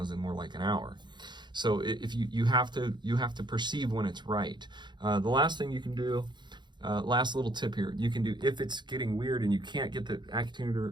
in more like an hour. So if you have to perceive when it's right. The last thing you can do, last little tip here, you can do, if it's getting weird and you can't get the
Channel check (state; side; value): late; left; 0.22 ms